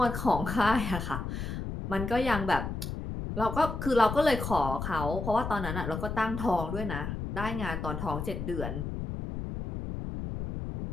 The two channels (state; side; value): noise; left; rumble, 5 dB below the sound